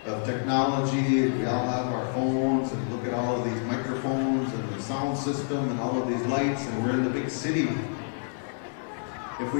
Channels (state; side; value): silent; right; digital silence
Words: of technology. We all have our phones, and look at all of these microphones and the sound system and all of these lights, and we're in the big city. If